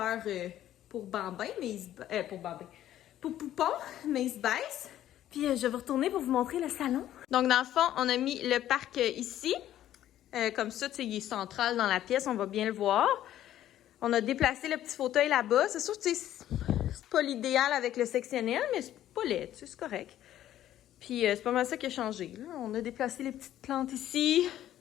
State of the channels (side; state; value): right; quieter; 12.4 dB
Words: pour Bambin, mais il se pour Bambin, pour Poupon, mais il se baisse. Puis je vais retourner pour vous montrer le salon. Donc, dans le fond, on a mis le parc ici. Comme ça, tu sais, il est central dans la pièce, on va bien le voir. On a déplacé le petit fauteuil là-bas. C'est sûr que c'est pas l'idéal avec le sectionnel, mais c'est pas laid, tu sais, c'est correct. Puis c'est pas mal ça qui a changé, là. On a déplacé les petites plantes ici.